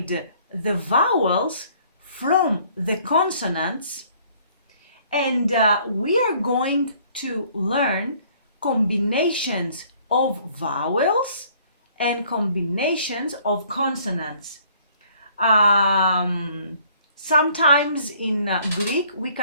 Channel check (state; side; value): inverted; both; correlation -0.59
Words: the vowels from the consonants, and we are going to learn combinations of vowels and combinations of consonants. Sometimes in Greek we